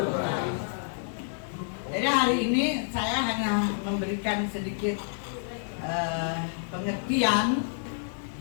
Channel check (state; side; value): silent; right; digital silence